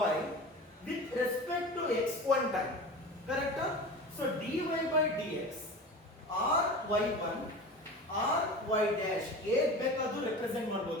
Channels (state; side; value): normal; both; correlation 0.33